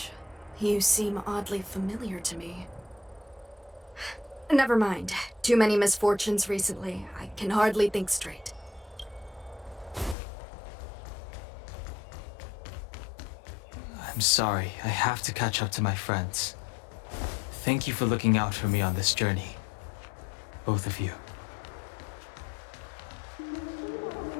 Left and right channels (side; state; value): right; drops out; at 10.2 s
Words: You seem oddly familiar to me. Never mind. Too many misfortunes recently. I can hardly think straight. I'm sorry, I have to catch up to my friends. Thank you for looking out for me on this journey. Both of you.